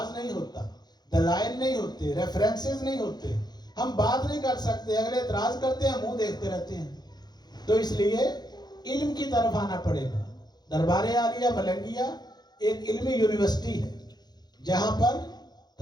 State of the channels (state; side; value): late; right; 0.20 ms